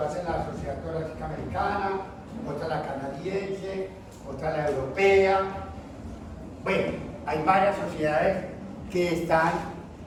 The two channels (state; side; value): identical; both; correlation 1.00